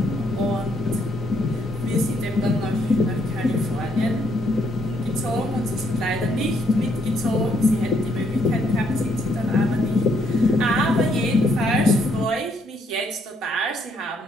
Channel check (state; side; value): normal; both; correlation 0.71